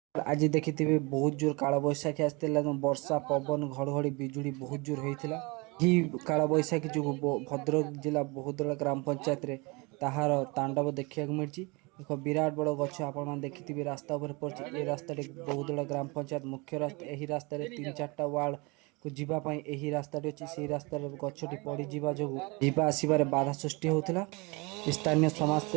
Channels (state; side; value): quieter; left; 27.3 dB